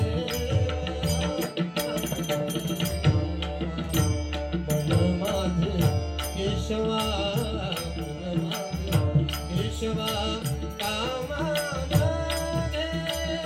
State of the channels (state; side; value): identical; both; correlation 1.00